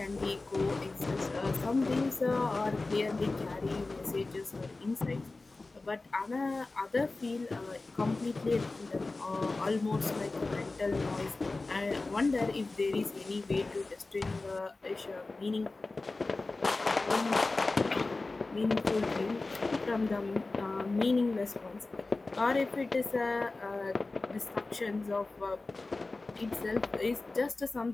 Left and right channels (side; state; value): right; quieter; 3.4 dB